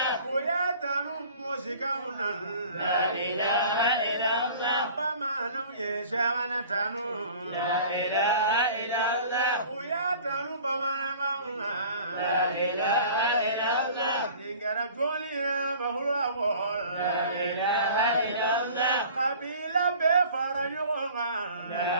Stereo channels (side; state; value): both; inverted; correlation -0.46